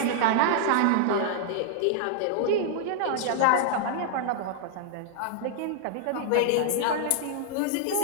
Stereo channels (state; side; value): different; both; correlation -0.01